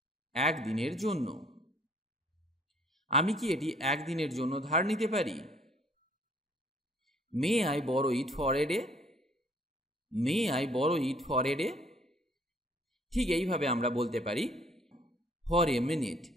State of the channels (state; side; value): normal; both; correlation 0.61